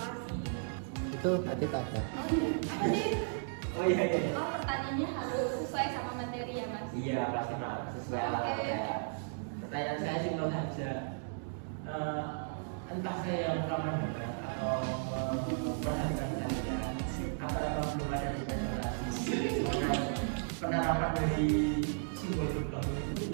kasih. Itu nanti ada. Oh iya, apa sih? Oh iya. Oh pertanyaannya harus sesuai sama materi ya mas? Iya pasti Pak, sesuai alatnya. Pertanyaan saya simpel saja. Entah saya yang kurang mendengar atau memperhatikan kalian, apakah belum ada presentasi penerapan dari simbol gerbang itu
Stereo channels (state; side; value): silent; left; digital silence